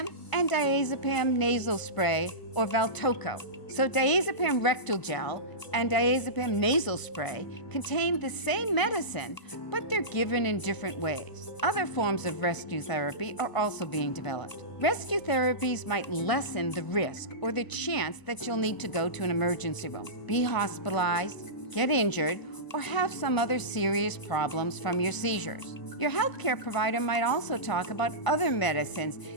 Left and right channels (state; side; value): late; right; 1.0 ms